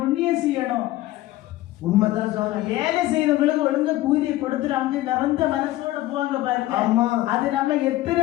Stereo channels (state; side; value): quieter; right; 16.4 dB